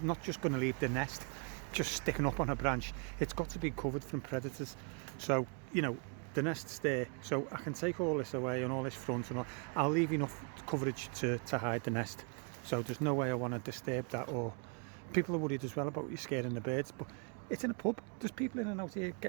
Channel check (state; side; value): quieter; left; 37.9 dB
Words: not just going to leave the nest just sticking up on a branch. It's got to be covered from predators. So, you know, the nest's there, so I can take all this away and all this front, and I'll leave enough coverage to hide the nest. So there's no way I want to disturb that. Or people are worried as well about you scaring the birds, but it's in a pub. There's people in and out here